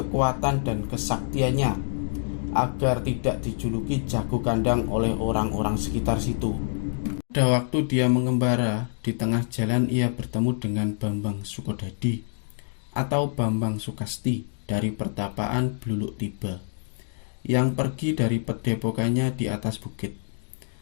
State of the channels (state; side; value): silent; right; digital silence